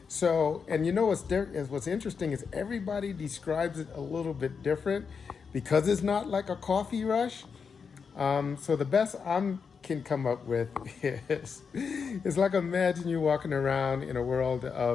So, and what's interesting is everybody describes it a little bit different because it's not like a coffee rush. So the best I can come up with is, it's like imagine you walking around in a world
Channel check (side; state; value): right; quieter; 5.9 dB